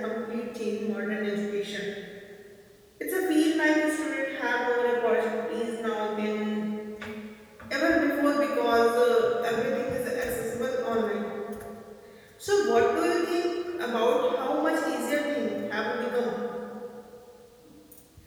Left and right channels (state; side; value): identical; both; correlation 1.00